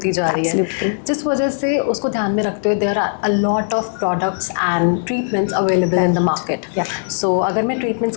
जा रही है, जिस वजह से उसको ध्यान में रखते हुए there are a lot of products and treatments available in the market. So अगर मैं ट्रीटमेंट्स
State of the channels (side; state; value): right; silent; 65 dB below the other